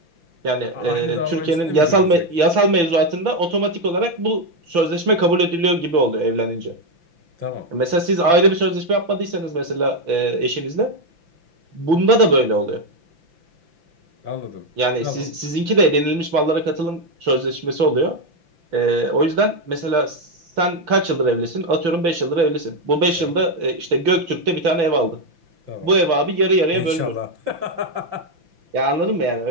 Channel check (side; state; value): left; late; 5.9 ms